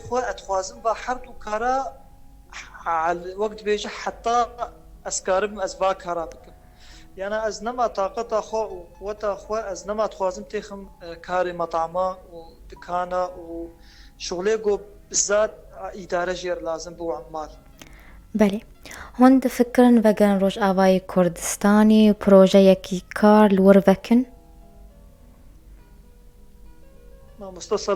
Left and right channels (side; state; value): both; identical; correlation 1.00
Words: اتخوازن با حردو كارا على وقت بيجي حتى اسكارم اسبا كارا بكم يعني ازنما طاقتا خوا وقوتا خوا ازنما تخوازن تيخم كاري مطعما ودكانا وشغلي قو بالذات اداره جير لازم بو عمال بله هون فكرن وگن روش آوای کردستانی پروژه یکی کار لور وکن